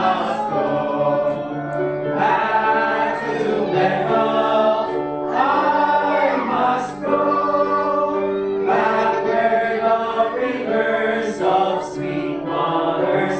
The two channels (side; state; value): left; noise; rumble, 27 dB below the sound